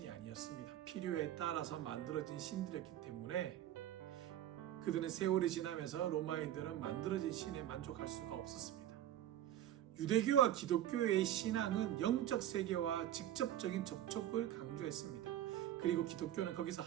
아니었습니다. 필요에 따라서 만들어진 신들이었기 때문에 그들은 세월이 지나면서 로마인들은 만들어진 신에 만족할 수가 없었습니다. 유대교와 기독교의 신앙은 영적 세계와 직접적인 접촉을 강조했습니다. 그리고 기독교는 거기서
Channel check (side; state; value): left; quieter; 11.9 dB